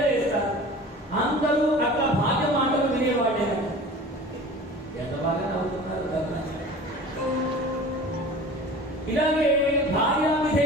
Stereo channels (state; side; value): normal; both; correlation 0.40